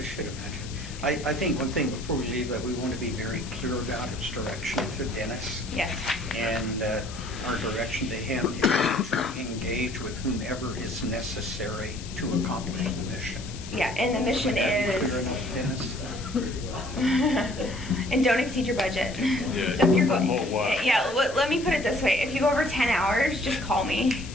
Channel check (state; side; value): noise; left; hiss, 14 dB below the sound